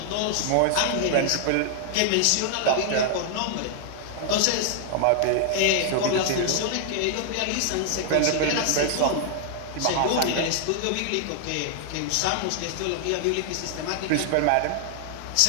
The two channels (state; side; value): different; both; correlation 0.00